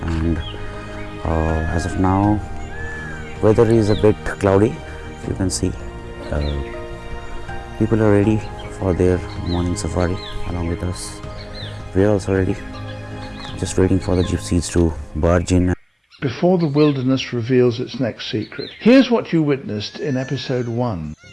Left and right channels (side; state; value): both; identical; correlation 1.00